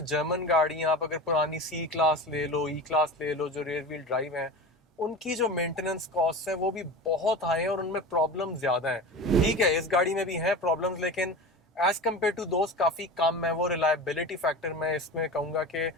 जर्मन गाड़ियां, आप अगर पुरानी सी क्लास ले लो, ई क्लास ले लो, जो रेयर व्हील ड्राइव हैं, उनकी जो मेंटेनेंस कॉस्ट है वो भी बहुत हाई है और उनमें प्रॉब्लम ज्यादा है। ठीक है, इस गाड़ी में भी है प्रॉब्लम्स, लेकिन एज कम्पेयर टू दोस्त काफी कम है। वो रिलायबिलिटी फैक्टर मैं इसमें कहूंगा कि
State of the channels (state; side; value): normal; both; correlation 0.31